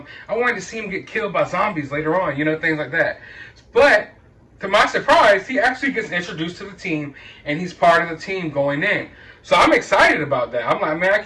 I wanted to see him get killed by zombies later on, you know, things like that. But to my surprise, he actually gets introduced to the team, and he's part of the team going in. So I'm excited about that. I'm like, man, I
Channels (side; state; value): both; identical; correlation 1.00